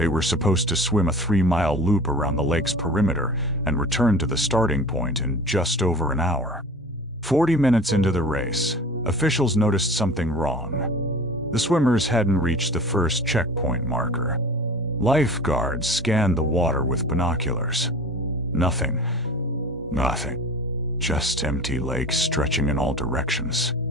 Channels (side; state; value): both; normal; correlation 0.39